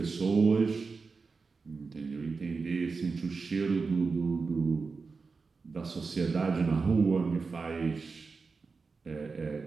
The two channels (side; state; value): left; quieter; 4.5 dB